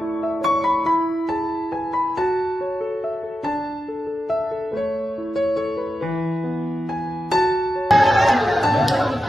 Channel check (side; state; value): both; normal; correlation 0.90